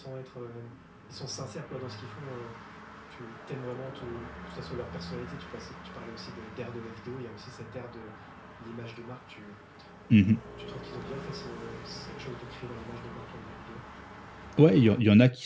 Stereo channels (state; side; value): identical; both; correlation 1.00